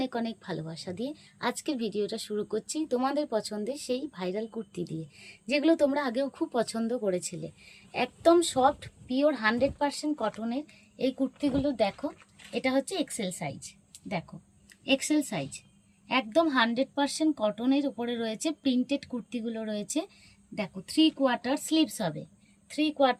অনেক ভালোবাসা দিয়ে আজকের ভিডিওটা শুরু করছি তোমাদের পছন্দের সেই ভাইরাল কুর্তি দিয়ে, যেগুলো তোমরা আগেও খুব পছন্দ করেছিলে। একদম সফট পিওর 100% কটনের এই কুর্তিগুলো দেখো। এটা হচ্ছে এক্সেল সাইজ, দেখো এক্সেল সাইজ, একদম 100% কটনের উপরে রয়েছে। প্রিন্টেড কুর্তিগুলো রয়েছে, দেখো 3/4 স্লিভস হবে,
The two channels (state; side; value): identical; both; correlation 1.00